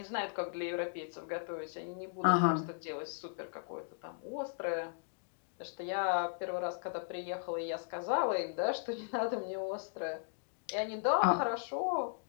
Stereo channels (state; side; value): silent; right; digital silence